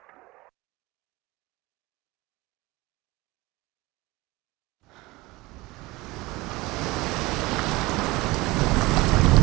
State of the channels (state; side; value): quieter; left; 21.5 dB